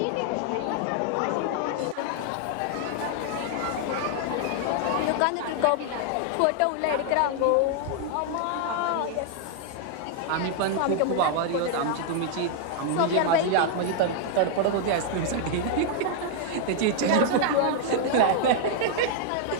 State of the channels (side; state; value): both; different; correlation -0.01